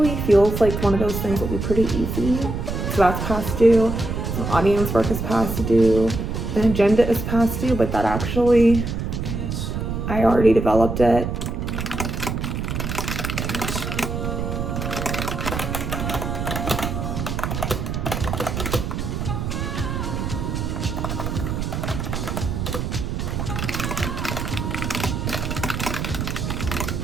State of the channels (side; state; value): right; noise; rumble, 3 dB below the sound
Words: feels like one of those things that will be pretty easy. So that's past due. Some audience work is past due. An agenda is past due, but that actually, I already developed it.